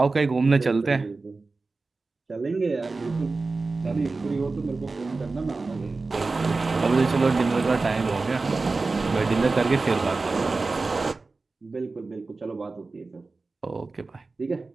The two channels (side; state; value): left; quieter; 3.7 dB